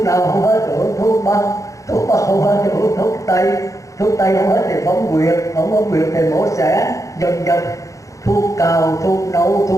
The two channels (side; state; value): right; late; 0.15 ms